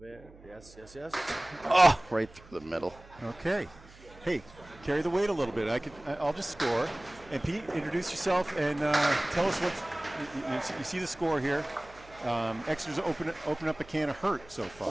Yes. Oh, right through the middle. Okay. Hey, carry the weight a little bit. I'll just score. And Pete, introduce yourself and tell us you see the score here. Exeter's open up a can of hurt so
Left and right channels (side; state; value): right; noise; hum, 22 dB below the sound